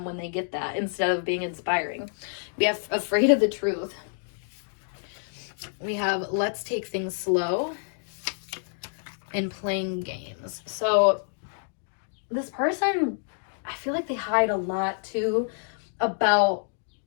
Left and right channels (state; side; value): silent; right; digital silence